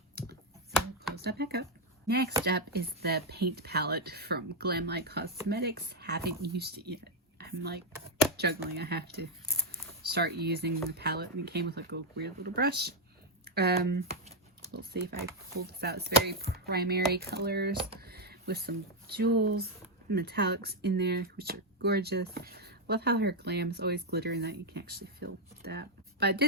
close that back up. Next up is the paint palette from Glam Light Cosmetics. Haven't used it yet. I I'm like juggling. I have to start using the palette, and it came with like a weird little brush. We'll see if I pull this out. It's very primary colors with some jewels, metallics in there, which are gorgeous. Love how her glam is always glittering, that you can actually feel that. But I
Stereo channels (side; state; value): both; normal; correlation 0.01